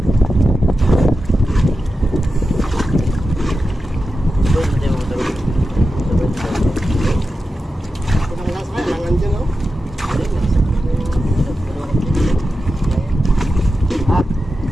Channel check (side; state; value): both; normal; correlation 0.91